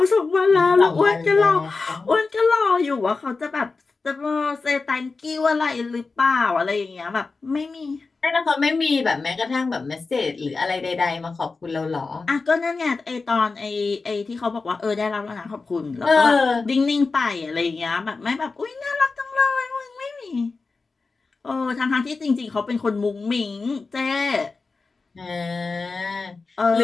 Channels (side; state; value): right; quieter; 4.1 dB